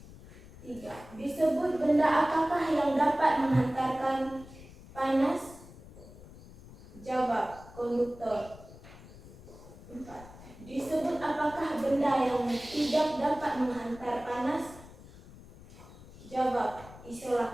3. Disebut benda apakah yang dapat menghantarkan panas? Jawab, konduktor. 4. Disebut apakah benda yang tidak dapat menghantar panas? Jawab,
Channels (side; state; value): left; noise; rumble, 18 dB below the sound